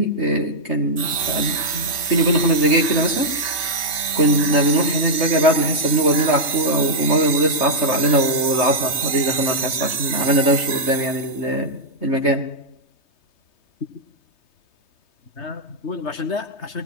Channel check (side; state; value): right; late; 3.2 ms